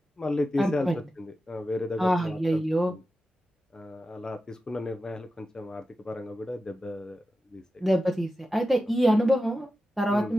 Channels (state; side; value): normal; both; correlation 0.92